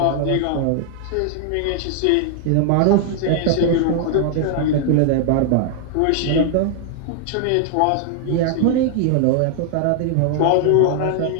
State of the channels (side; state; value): both; different; correlation 0.00